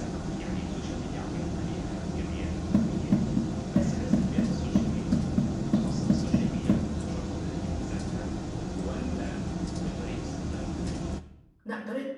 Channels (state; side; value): identical; both; correlation 1.00